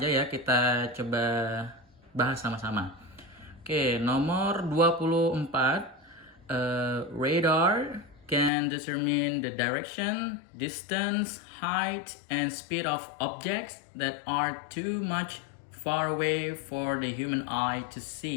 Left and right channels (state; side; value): drops out; right; at 8.5 s